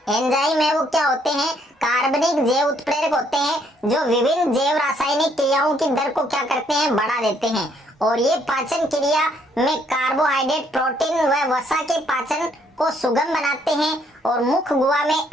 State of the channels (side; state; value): both; normal; correlation 0.68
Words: एंजाइम है वो क्या होते हैं, कार्बनिक जैव उत्प्रेरक होते हैं, जो विभिन्न जैव रासायनिक क्रियाओं की दर को क्या करते हैं, बढ़ा देते हैं। और ये पाचन क्रिया में कार्बोहाइड्रेट, प्रोटीन व वसा के पाचन को सुगम बनाते हैं। और मुख्य गुहा में